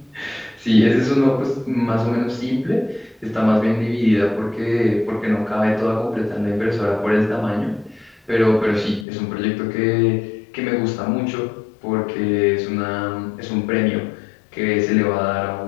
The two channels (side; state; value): right; drops out; at 9.1 s